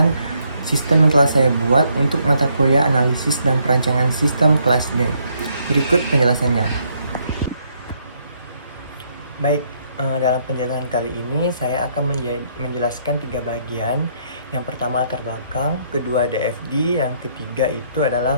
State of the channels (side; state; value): both; inverted; correlation -0.71